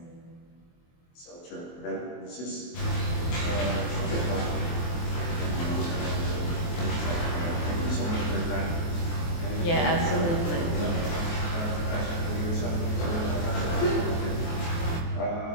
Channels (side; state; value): right; late; 23 ms